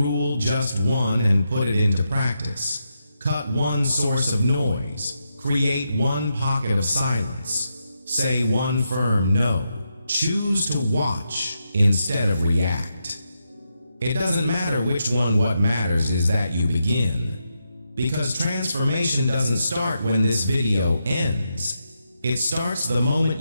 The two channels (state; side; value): inverted; both; correlation -0.84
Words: just one, and put it into practice. Cut one source of noise. Create one pocket of silence. Say one firm no. Choose to watch instead of react. It doesn't matter which one, what matters is that you begin. Because transformation doesn't start when this video ends. It starts the moment